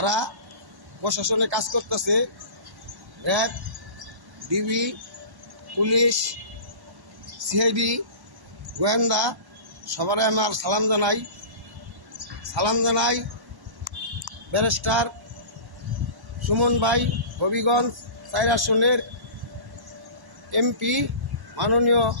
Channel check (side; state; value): left; late; 1.1 ms